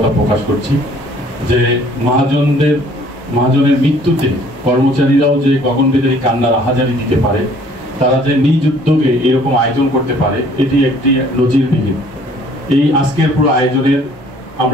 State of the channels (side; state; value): both; normal; correlation 0.57